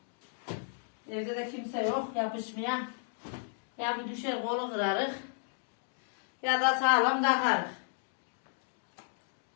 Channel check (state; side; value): silent; right; digital silence